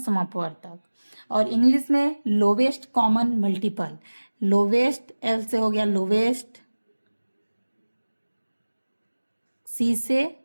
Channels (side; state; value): both; inverted; correlation -1.00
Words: और इंग्लिश में lowest common multiple. Lowest L से हो गया लोवेस्ट, सी से